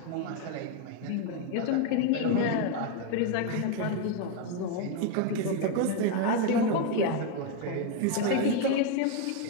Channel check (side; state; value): both; different; correlation 0.01